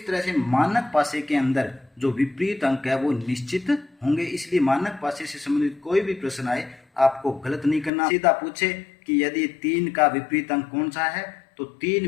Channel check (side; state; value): right; drops out; at 7.9 s